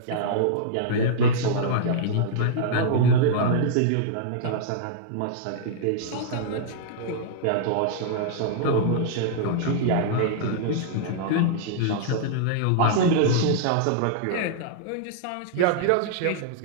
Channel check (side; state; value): both; different; correlation -0.02